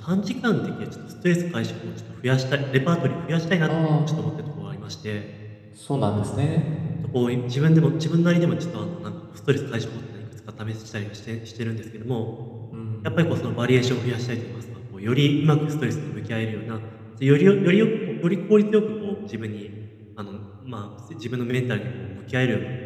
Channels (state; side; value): identical; both; correlation 1.00